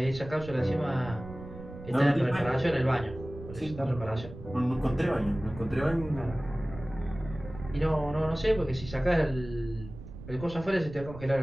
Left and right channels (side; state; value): right; noise; rumble, 13 dB below the sound